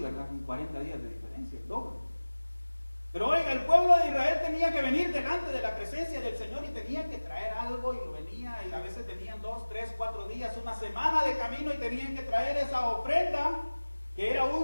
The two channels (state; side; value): inverted; both; correlation -1.00